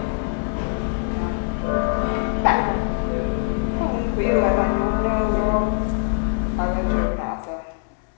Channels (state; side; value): silent; right; 64 dB below the other